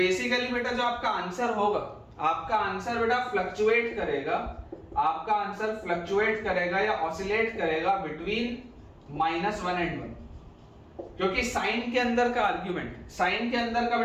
बेटा जो आपका आंसर होगा, आपका आंसर बेटा फ्लक्चुएट करेगा, आपका आंसर फ्लक्चुएट करेगा या ऑसिलेट करेगा बिटवीन -1 एंड 1। क्योंकि साइन के अंदर का आर्गुमेंट, साइन के अंदर का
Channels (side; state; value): both; identical; correlation 1.00